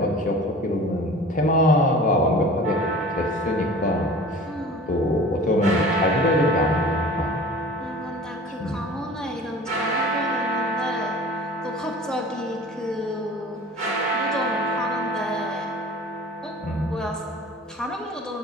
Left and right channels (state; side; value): normal; both; correlation 0.42